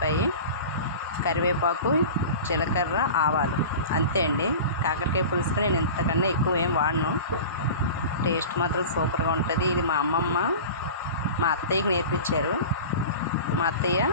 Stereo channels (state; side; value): inverted; both; correlation -0.35